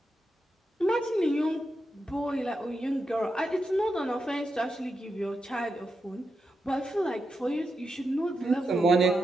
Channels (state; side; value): normal; both; correlation 0.86